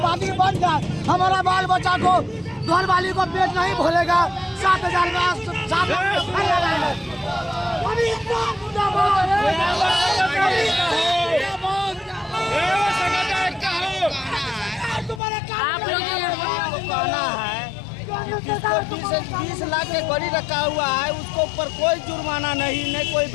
बन जाए, हमारा बाल बच्चा को घर वाली को पेट नहीं भोलेगा। 7,000 का 7 आप लोग कहना है जिसको 20 लाख के गड़ी रखा हुआ है उसको ऊपर कोई जुर्माना नहीं कोई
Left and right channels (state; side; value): drops out; right; at 15.2 s